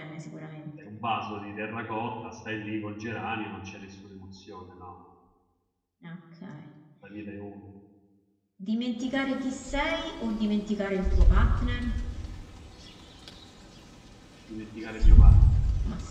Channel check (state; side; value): identical; both; correlation 1.00